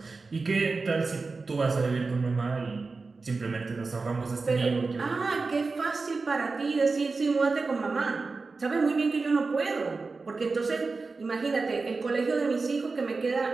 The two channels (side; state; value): left; quieter; 4.1 dB